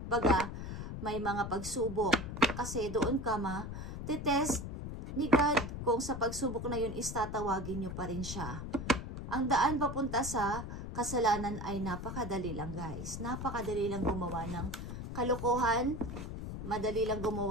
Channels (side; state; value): left; noise; rumble, 7 dB below the sound